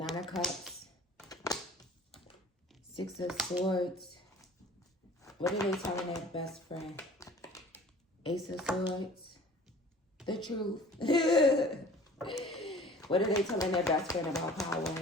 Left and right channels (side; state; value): both; normal; correlation 0.47